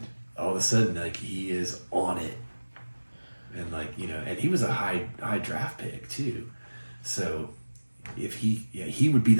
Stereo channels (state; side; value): inverted; both; correlation -1.00